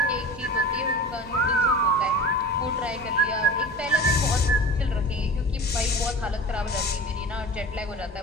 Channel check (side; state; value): both; normal; correlation 0.35